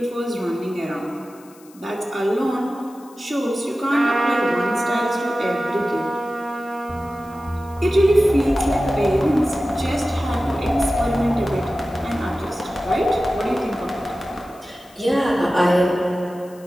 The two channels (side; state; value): left; noise; hiss, 26 dB below the sound